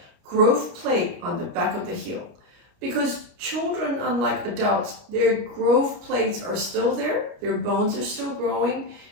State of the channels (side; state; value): left; late; 29 ms